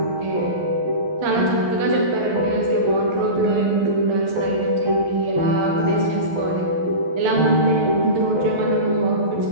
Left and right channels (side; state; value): left; late; 12 ms